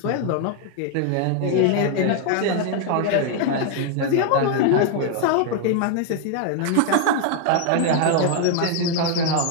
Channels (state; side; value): different; both; correlation 0.00